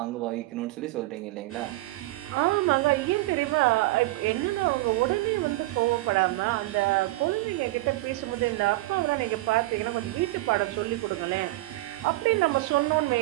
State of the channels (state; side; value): quieter; left; 19.5 dB